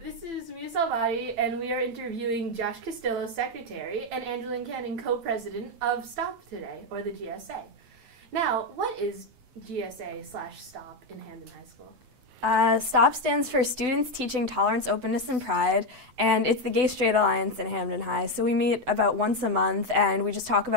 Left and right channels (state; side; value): late; left; 8.0 ms